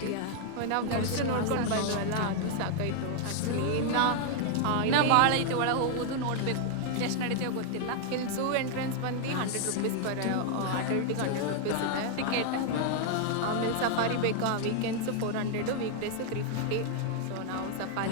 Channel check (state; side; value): different; both; correlation 0.00